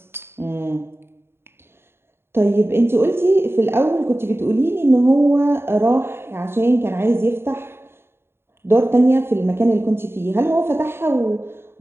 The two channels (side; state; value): left; late; 0.11 ms